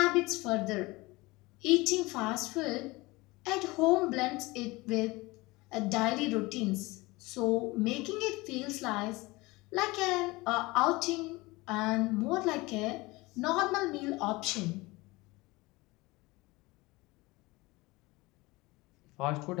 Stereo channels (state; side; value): quieter; right; 22.2 dB